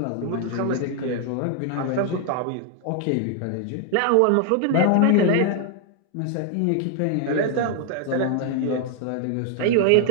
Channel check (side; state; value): both; different; correlation 0.00